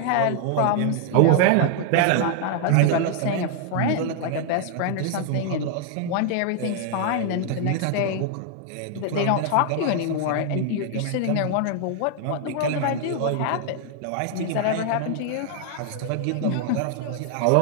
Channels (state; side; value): different; both; correlation 0.00